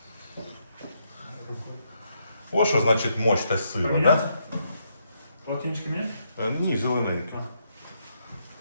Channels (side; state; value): both; inverted; correlation -0.77